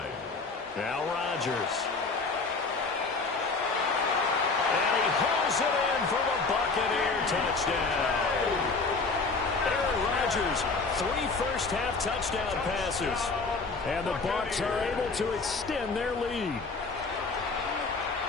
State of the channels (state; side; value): quieter; right; 4.1 dB